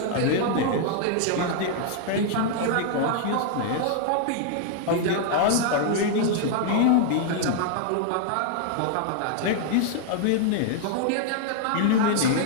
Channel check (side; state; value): both; different; correlation -0.01